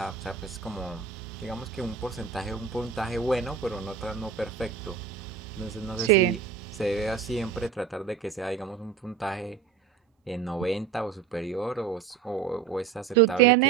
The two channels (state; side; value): quieter; left; 6.8 dB